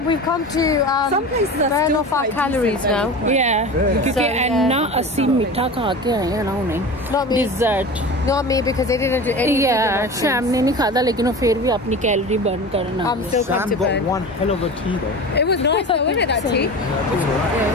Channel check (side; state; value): both; normal; correlation 0.32